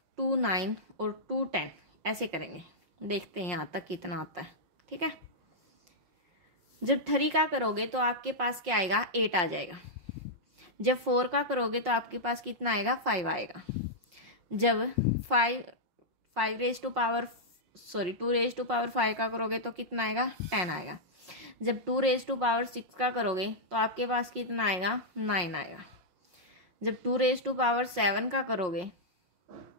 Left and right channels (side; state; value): left; late; 5.6 ms